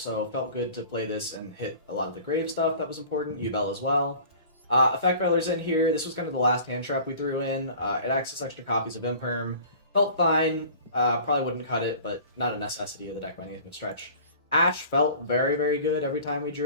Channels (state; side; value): inverted; both; correlation -0.44